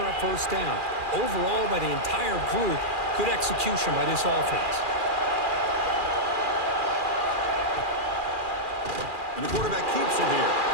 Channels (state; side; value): late; left; 2.4 ms